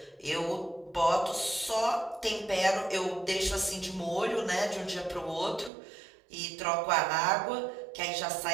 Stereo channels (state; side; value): drops out; left; at 5.7 s